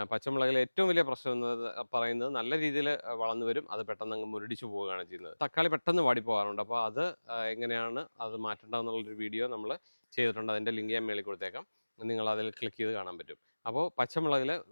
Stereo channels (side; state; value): both; inverted; correlation -1.00